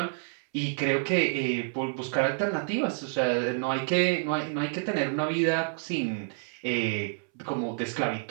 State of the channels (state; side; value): silent; left; 59 dB below the other